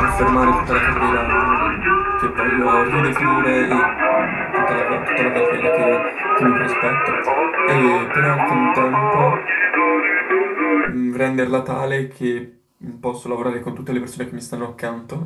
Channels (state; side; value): identical; both; correlation 1.00